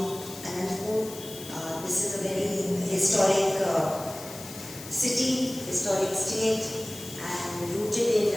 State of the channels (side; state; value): left; noise; hiss, 13 dB below the sound